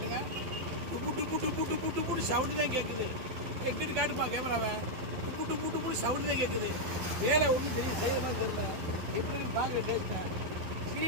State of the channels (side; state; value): left; late; 12 ms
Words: டுப்பு டுப்பு டுப்பு டுப்பு டுப்புன்னு சவுண்டு தான் கேட்குது. எங்கிட்டு காட்டுப்பா கேமராவை. டுப்பு டுப்பு டுப்புன்னு சவுண்டு தான் கேட்குது. வேலை ஒன்றும் தெரியும், செய்யறதா தெரியல. எப்படின்னு பார்க்குற டேஸ்ட்டை